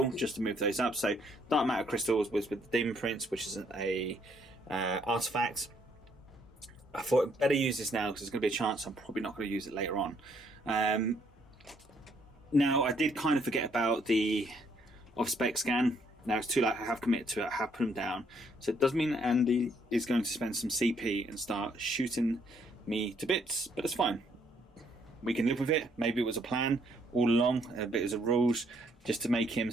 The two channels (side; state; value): both; normal; correlation 0.69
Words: just to move those up. So Dark Matter Crystal was with the Demon Prince, which is a artifact. I thought I'd better use this now because there's going to be a chance I'm probably not going to use it later on. Now, I did kind of forget about the off-spec scan. Now it's too late. I have committed to it. I have put him down. So it does mean Andy is going to spend some CP and start shooting me to bits, but it's fine. We can live with it. Maybe it was a plan all along, a bit as a rules, just to make him